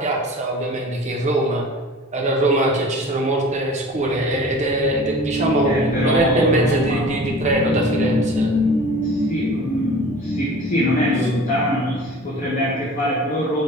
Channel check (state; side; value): normal; both; correlation 0.42